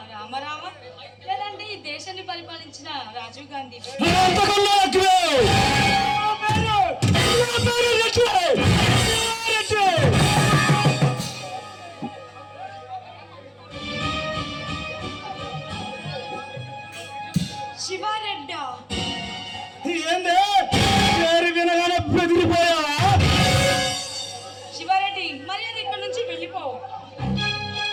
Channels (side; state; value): both; identical; correlation 1.00